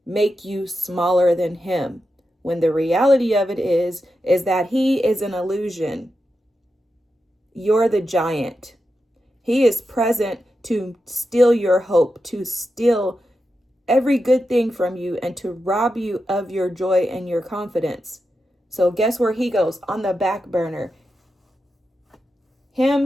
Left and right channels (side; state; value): both; normal; correlation 0.89